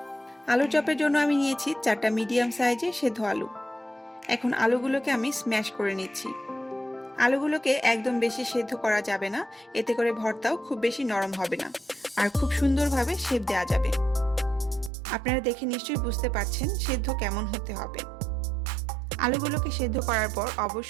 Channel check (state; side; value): drops out; left; at 14.9 s